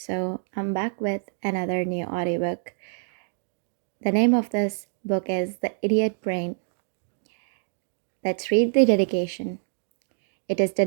I'm back with another new audiobook. The name of this book is The Idiot Brain. Let's read the dedication. It is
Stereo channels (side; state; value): left; silent; digital silence